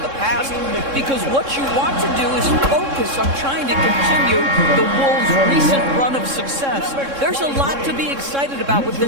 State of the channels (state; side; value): late; left; 3.7 ms